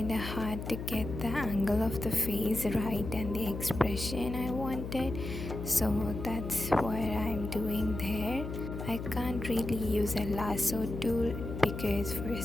hard to get the angle of the face right and the expression I wanted, so that's what I'm doing there. I can't really use a lasso tool because for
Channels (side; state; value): left; noise; hum, 7 dB below the sound